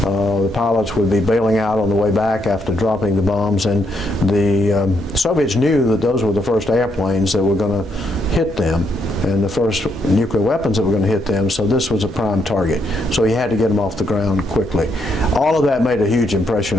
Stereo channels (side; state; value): both; normal; correlation 0.76